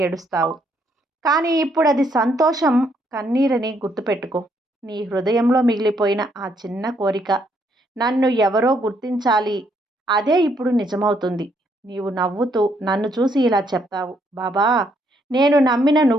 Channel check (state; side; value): normal; both; correlation 0.72